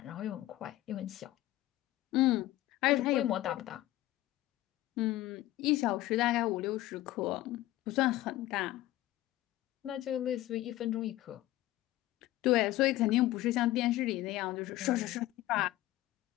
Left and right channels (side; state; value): right; quieter; 15.9 dB